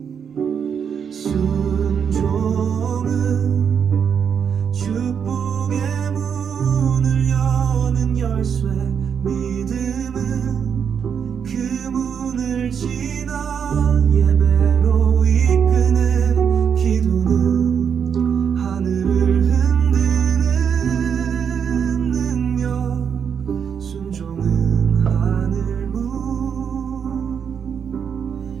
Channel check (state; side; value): quieter; left; 7.3 dB